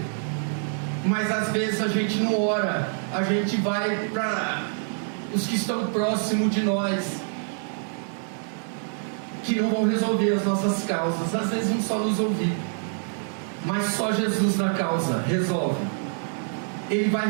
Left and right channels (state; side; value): silent; left; 61 dB below the other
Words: Mas às vezes a gente não ora. A gente vai para os que estão próximos de nós, que não vão resolver as nossas causas. Às vezes vão só nos ouvir, mas só Jesus na causa resolve. Ele vai